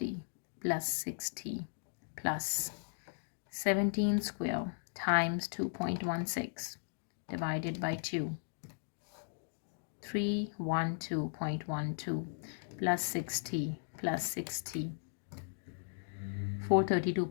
plus 60 plus 17 square times 2.16 divided by 2. 312.12 plus 60 plus 60.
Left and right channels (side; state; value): right; silent; digital silence